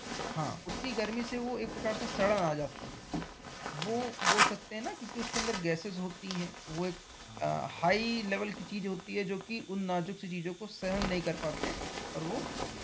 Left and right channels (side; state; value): both; identical; correlation 1.00